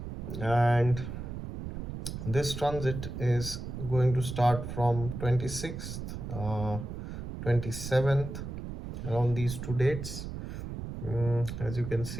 and this transit is going to start from 26th, 27th, around these two dates. As you can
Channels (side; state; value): right; noise; rumble, 7 dB below the sound